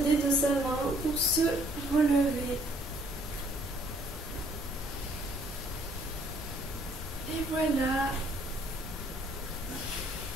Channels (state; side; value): normal; both; correlation 0.61